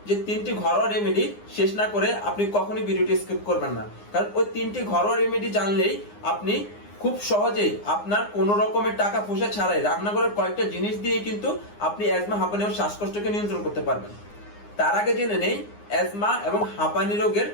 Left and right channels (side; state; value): right; late; 9.7 ms